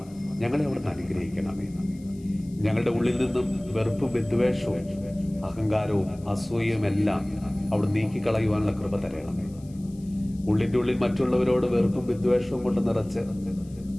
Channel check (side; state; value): left; noise; hiss, 27 dB below the sound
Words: ഞങ്ങളെ അവിടുന്ന് അനുഗ്രഹിക്കണമേ. ഞങ്ങളുടെ ഉള്ളിൽ നിന്നും വെറുപ്പും വിദ്വേഷവും അഹങ്കാരവും അസൂയയും എല്ലാം അവിടെ നീക്കിക്കളയുവാനുള്ള കൃപ തരണമേ. ഉള്ളിൻ്റെ ഉള്ളിൽ മറ്റുള്ളവരോട് വെറുപ്പും വിദ്വേഷവും കൊണ്ട് നിറച്ച്